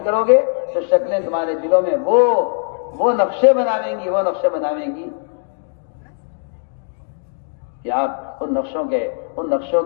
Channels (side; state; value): right; silent; 66 dB below the other